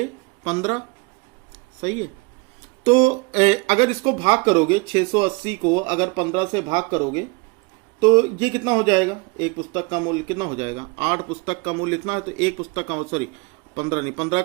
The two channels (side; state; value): left; quieter; 27.9 dB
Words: 15। सही है। तो अगर इसको भाग करोगे, 680 को अगर 15 से भाग करोगे तो ये कितना हो जाएगा, एक पुस्तक का मूल्य कितना हो जाएगा, 8 पुस्तक का मूल्य इतना है, तो एक पुस्तक का, सॉरी 15 नहीं, 15